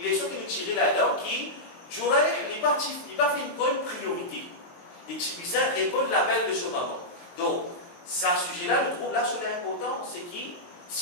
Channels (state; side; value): late; right; 23 ms